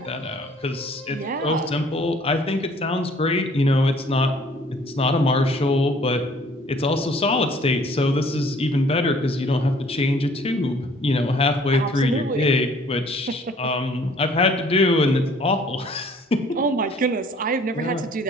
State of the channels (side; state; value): both; normal; correlation 0.56